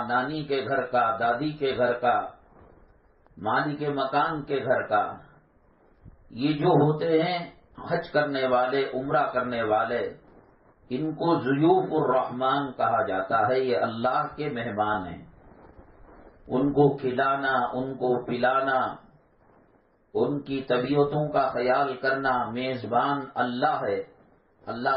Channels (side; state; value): both; identical; correlation 1.00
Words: نانی کے گھر کا، دادی کے گھر کا، مالک مکان کے گھر کا، یہ جو ہوتے ہیں حج کرنے والے، عمرہ کرنے والے، ان کو ضیوف الرحمان کہا جاتا ہے۔ یہ اللہ کے مہمان ہیں، ان کو کھلانا، ان کو پلانا، ان کی طبیعتوں کا خیال کرنا، میزبان اللہ ہے، اللہ